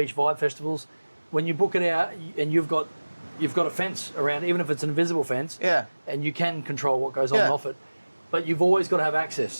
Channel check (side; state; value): both; inverted; correlation -1.00